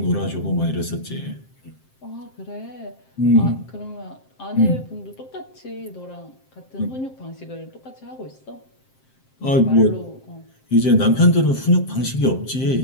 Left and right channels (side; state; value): right; late; 7.6 ms